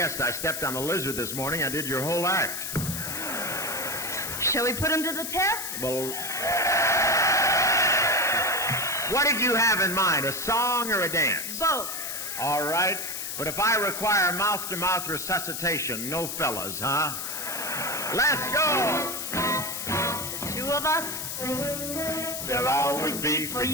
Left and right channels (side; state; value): left; noise; hiss, 5 dB below the sound